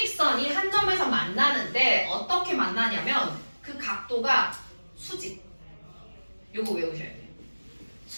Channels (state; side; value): inverted; both; correlation -1.00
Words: 한 점에서 만나는데 어떻게 만나냐면 그 각도가 수직. 요거 외우셔야 돼요.